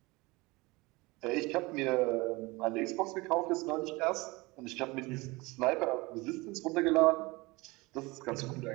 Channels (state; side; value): quieter; left; 23.4 dB